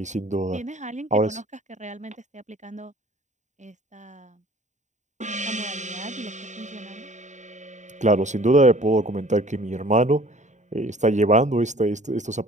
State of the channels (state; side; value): late; left; 0.35 ms